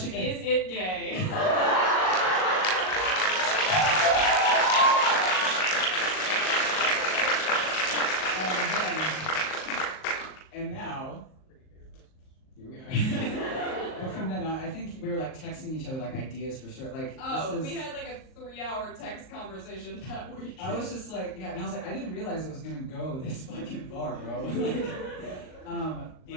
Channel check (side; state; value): right; late; 38 ms